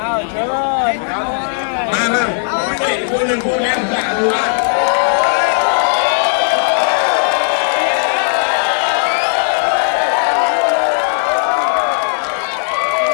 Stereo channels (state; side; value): silent; right; 70 dB below the other